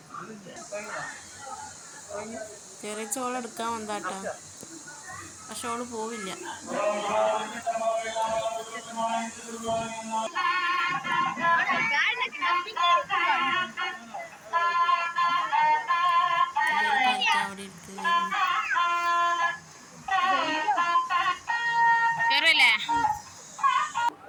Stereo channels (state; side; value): identical; both; correlation 1.00